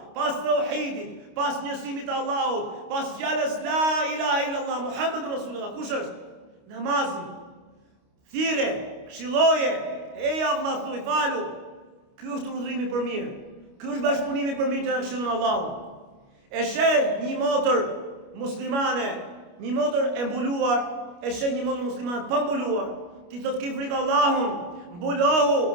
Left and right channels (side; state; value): left; late; 29 ms